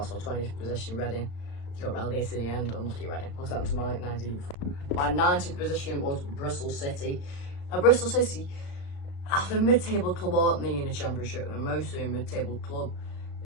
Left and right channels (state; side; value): late; right; 35 ms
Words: our 20th position, Reading. They got relegated in the end, unlucky Reading. What's that to my 19th? My 19th position was Bristol City. Now, Bristol City, they're a mid-table club, aren't they, in the Championship? They're mostly a mid-table club.